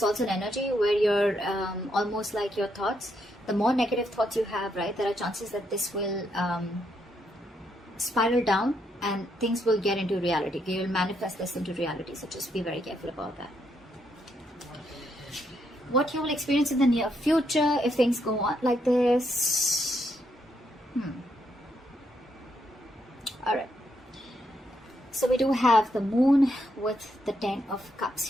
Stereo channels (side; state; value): both; normal; correlation 0.77